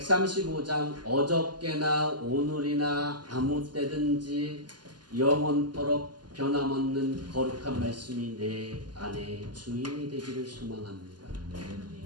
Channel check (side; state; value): left; late; 0.70 ms